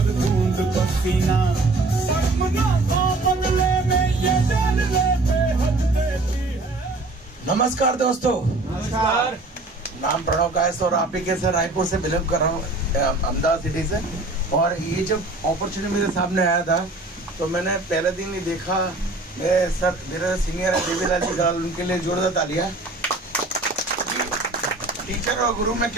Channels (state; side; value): quieter; left; 3.0 dB